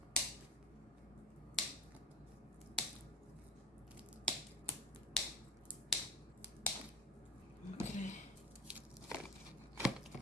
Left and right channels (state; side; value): normal; both; correlation 0.34